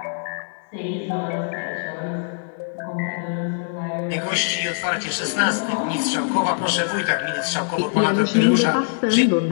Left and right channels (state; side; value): silent; right; digital silence